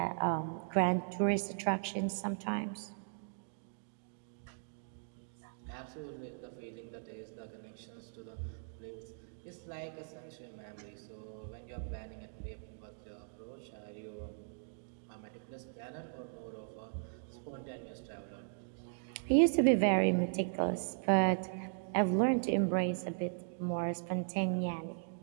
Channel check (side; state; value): left; silent; digital silence